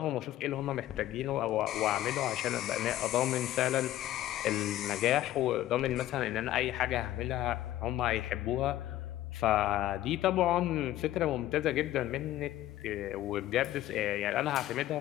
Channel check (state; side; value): quieter; right; 13.9 dB